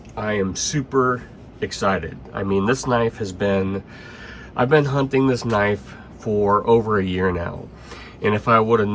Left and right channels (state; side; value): identical; both; correlation 1.00